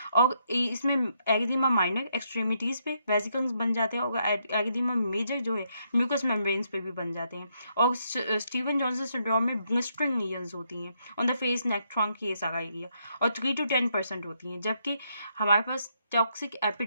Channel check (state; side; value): inverted; both; correlation -0.76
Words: और इसमें एरिथेमा माइनर एक्सट्रीमिटीज पे वेसिकल्स बन जाते हैं, और एरिथेमा मेजर जो है म्यूकस मेम्ब्रेन्स पे भी बन जाते हैं। और स्टीवन जॉनसन सिंड्रोम में ब्लिस्टरिंग लीजन्स होती हैं on the face, neck, trunk, ये सारा एरिया, और 3 to 10% होती हैं। जबकि हमारे पास टॉक्सिक